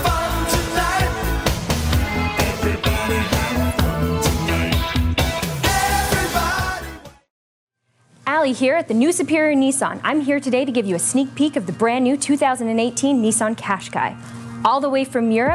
fun tonight. Everybody have fun tonight. Everybody. Allie here at the new Superior Nissan. I'm here today to give you a sneak peek of the brand new 2018 Nissan Qashqai. All the way from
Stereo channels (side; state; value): both; identical; correlation 1.00